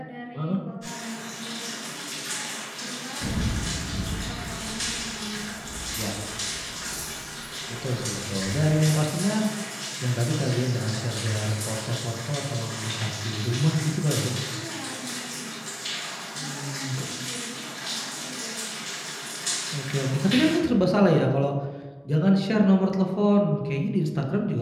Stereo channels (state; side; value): identical; both; correlation 1.00